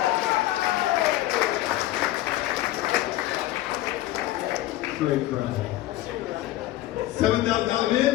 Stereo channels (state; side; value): quieter; right; 15.5 dB